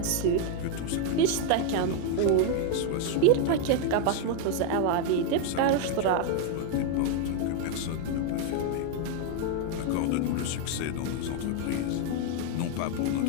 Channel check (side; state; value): both; different; correlation 0.00